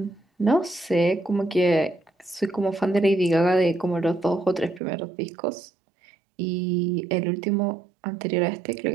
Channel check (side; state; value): left; drops out; at 4.8 s